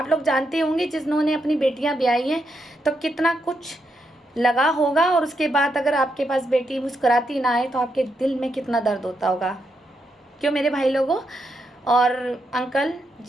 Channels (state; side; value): normal; both; correlation 0.82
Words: लोग जानते होंगे जिन्होंने अपनी बेटियां ब्याही हैं तो कितना कुछ लगा होगा, और उसके बाद अगर आपके पास बेटी मुस्कुराती ना आए तो आपके दिल में कितना दर्द होता होगा। क्यों मेरे भाई लोगों और अंकल